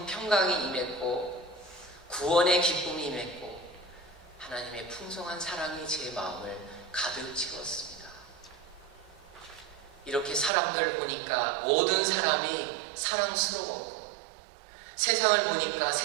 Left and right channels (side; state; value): left; drops out; at 10.5 s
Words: 평강이 임했고, 구원의 기쁨이 임했고, 하나님의 풍성한 사랑이 제 마음을 가득 채웠습니다. 이렇게 사람들 보니까 모든 사람이 사랑스러웠고, 세상을 보니까